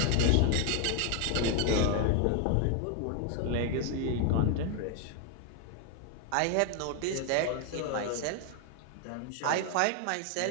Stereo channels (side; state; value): both; different; correlation 0.00